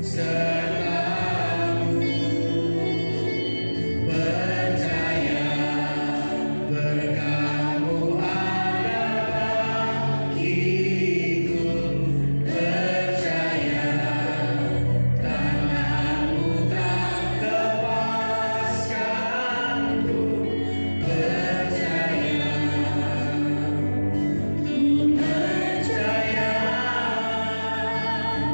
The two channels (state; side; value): inverted; both; correlation -1.00